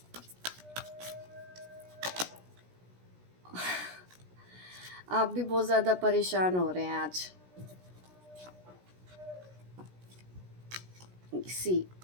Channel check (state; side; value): late; left; 17 ms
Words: आप भी बहुत ज़्यादा परेशान हो रहे हैं आज। सी